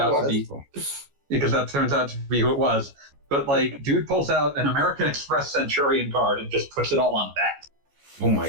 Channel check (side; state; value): left; late; 14 ms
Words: to was. be, because that turns out to be who it was. But like, dude pulls out an American Express Centurion card and just puts it all on that. Oh